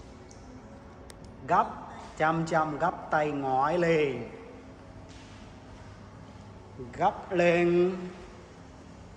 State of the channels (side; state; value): both; identical; correlation 1.00